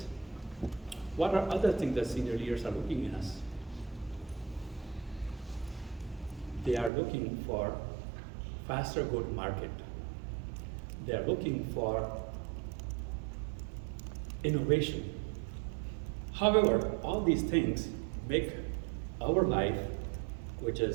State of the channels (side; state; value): left; drops out; at 6.9 s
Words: What are other things that senior leaders are looking in us? They are looking for faster go-to-market. They are looking for innovation. However, all these things make our life, which